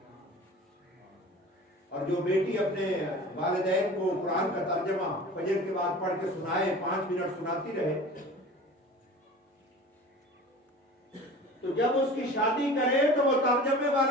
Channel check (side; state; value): both; normal; correlation 0.39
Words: اور جو بیٹی اپنے والدین کو قرآن کا ترجمہ فجر کے بعد پڑھ کے سنائے، 5 منٹ سناتی رہے، تو جب اس کی شادی کرے تو وہ ترجمے